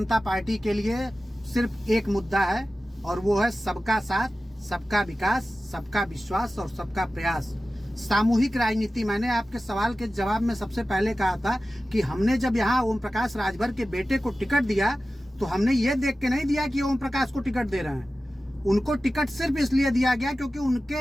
पार्टी के लिए सिर्फ एक मुद्दा है, और वो है सबका साथ, सबका विकास, सबका विश्वास और सबका प्रयास। सामूहिक राजनीति। मैंने आपके सवाल के जवाब में सबसे पहले कहा था कि हमने जब यहाँ ओम प्रकाश राजभर के बेटे को टिकट दिया, तो हमने ये देख के नहीं दिया कि ओम प्रकाश को टिकट दे रहे हैं। उनको टिकट सिर्फ इसलिए दिया गया क्योंकि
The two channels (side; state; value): both; normal; correlation 0.95